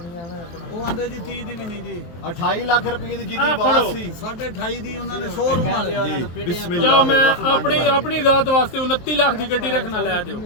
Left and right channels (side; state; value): right; late; 23 ms